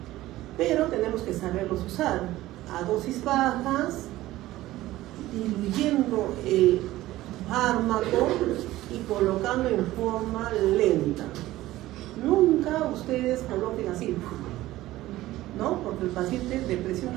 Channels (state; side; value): quieter; left; 16.3 dB